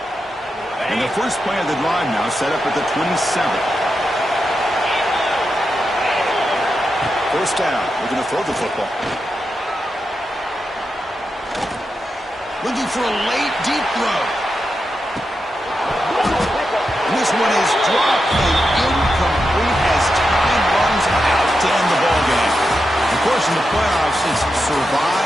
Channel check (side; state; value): both; normal; correlation 0.88